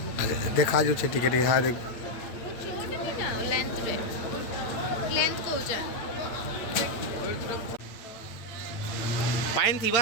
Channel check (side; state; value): right; late; 8.7 ms